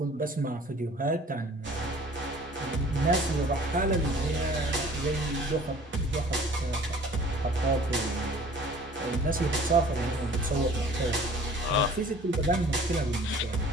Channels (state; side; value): normal; both; correlation 0.49